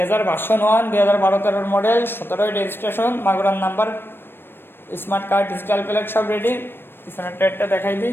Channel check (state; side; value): late; right; 0.10 ms